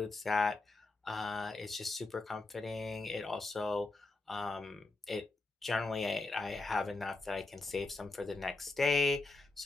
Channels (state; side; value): quieter; right; 3.3 dB